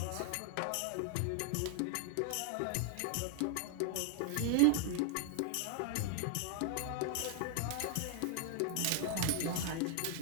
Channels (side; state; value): both; different; correlation 0.00